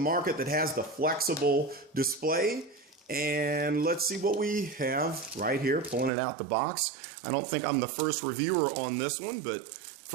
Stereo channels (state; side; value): drops out; left; at 6.1 s